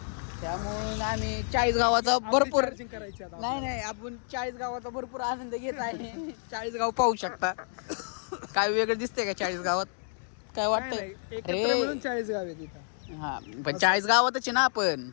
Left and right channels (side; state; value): right; silent; digital silence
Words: त्यामुळे आम्ही 40 गावाचा भरपूर नाही आपण 40 गावाचा भरपूर आनंद घेत आहे. 40 गाव पाहू शकता. काय वेगळं दिसतंय का 40 गावात? काय वाटतंय? 40 गाव आहे तिथं. हा पण 40 गावातच आहे ना आपण.